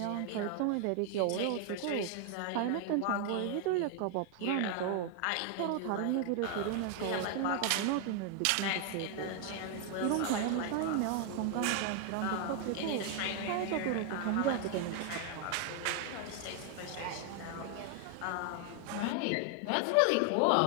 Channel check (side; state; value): both; different; correlation 0.00